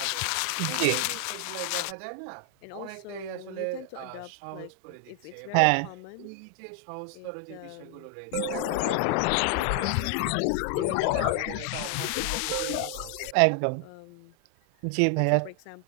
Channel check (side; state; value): both; different; correlation 0.00